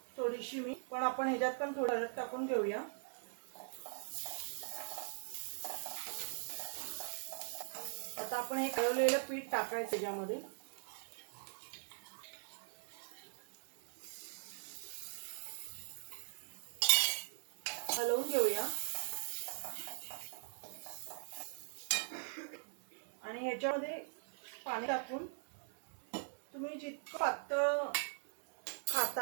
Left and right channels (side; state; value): left; silent; digital silence